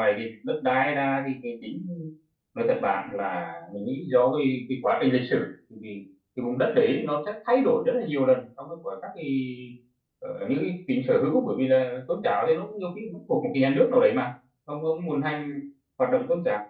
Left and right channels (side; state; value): both; identical; correlation 1.00